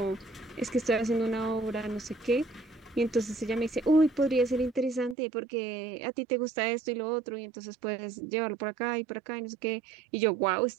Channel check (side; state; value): left; drops out; at 5.2 s